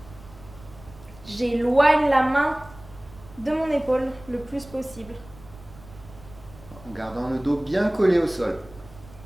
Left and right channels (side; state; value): right; noise; rumble, 20 dB below the sound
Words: J'éloigne la main de mon épaule le plus possible. En gardant le dos bien collé au sol.